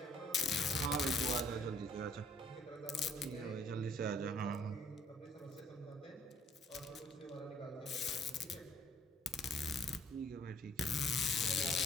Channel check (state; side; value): normal; both; correlation 0.60